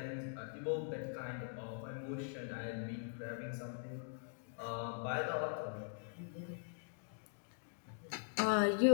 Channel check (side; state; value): right; silent; digital silence